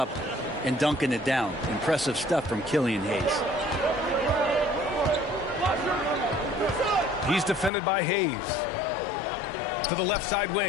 and dunking it down? Impressive stuff from Killian Hayes. He's defended by Hayes. To the left side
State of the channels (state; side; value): drops out; right; at 7.7 s